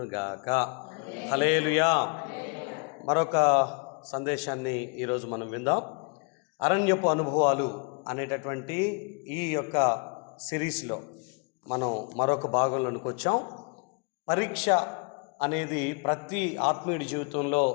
గాక. హల్లెలూయా. మరొక సందేశాన్ని ఈరోజు మనం విందాం. అరణ్యపు అనుభవాలు అనేటటువంటి ఈ యొక్క సిరీస్లో మనం మరొక భాగంలోనికి వచ్చాం. పరీక్ష అనేది ప్రతి ఆత్మీయుడి జీవితంలో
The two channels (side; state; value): right; quieter; 33.5 dB